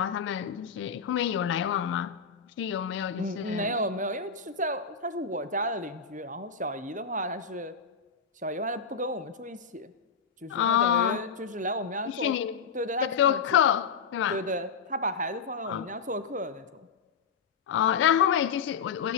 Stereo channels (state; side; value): quieter; right; 5.9 dB